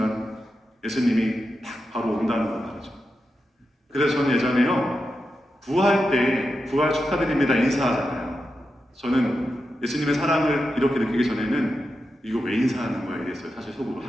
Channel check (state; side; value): normal; both; correlation 0.88